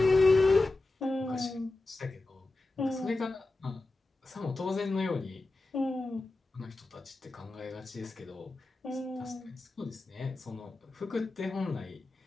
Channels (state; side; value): quieter; right; 3.0 dB